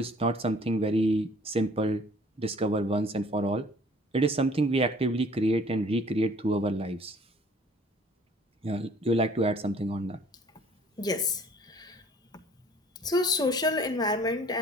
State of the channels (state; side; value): normal; both; correlation 0.54